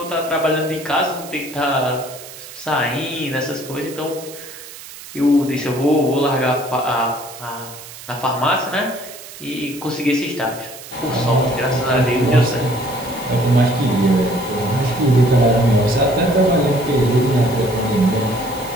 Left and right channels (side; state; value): right; noise; hiss, 15 dB below the sound